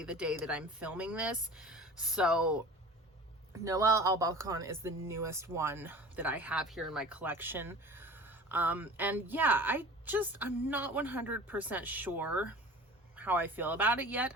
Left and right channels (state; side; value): normal; both; correlation 0.40